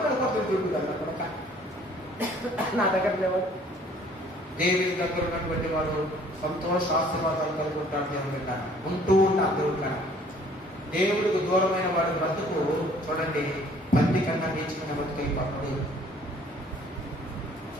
కోసం తిరుగుతాడు అక్కడ. నా దగ్గర లేవాడు. దేవుని దగ్గర ఉన్నటువంటి వాడు సంతోష ఆశీర్వాదాలు కలిగి ఉంటాడు. దేవుని బిడ్డ ఉంటూ ఉంటాడు. దేవుడు కన్నా దేవుడికి దూరమైన వాడి బ్రతుకు చూడండి పంది కన్నా నేర్చుకునే బతుకైపోతుంది.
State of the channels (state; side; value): normal; both; correlation 0.56